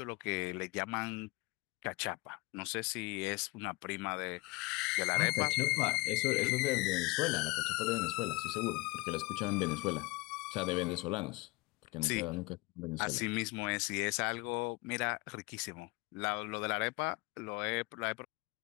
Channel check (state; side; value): quieter; right; 24.6 dB